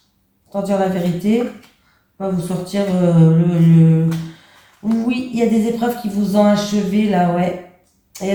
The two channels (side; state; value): both; identical; correlation 1.00